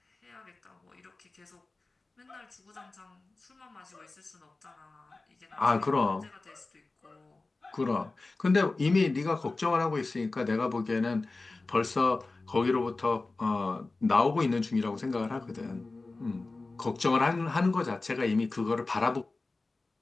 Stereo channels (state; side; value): quieter; right; 3.4 dB